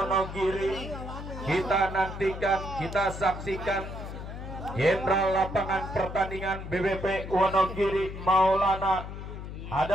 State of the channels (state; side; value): noise; left; hum, 9 dB below the sound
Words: Kita nantikan, kita saksikan Jenderal lapangan pertandingan BBP Wonogiri Maulana